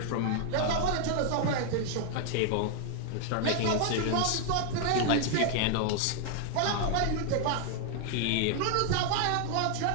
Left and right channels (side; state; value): both; different; correlation 0.00